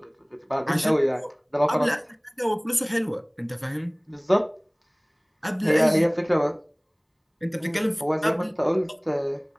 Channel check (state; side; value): identical; both; correlation 1.00